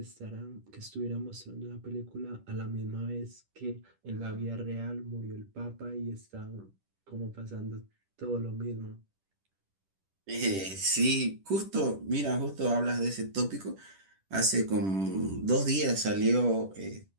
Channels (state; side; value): late; left; 10 ms